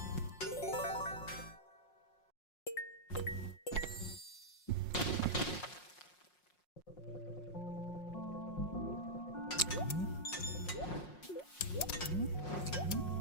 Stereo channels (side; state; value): right; late; 5.5 ms